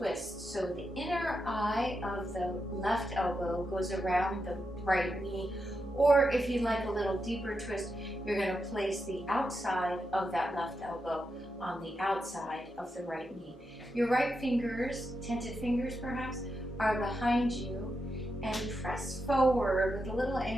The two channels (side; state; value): both; normal; correlation 0.86